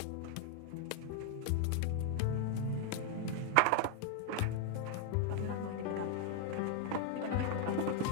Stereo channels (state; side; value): different; both; correlation 0.01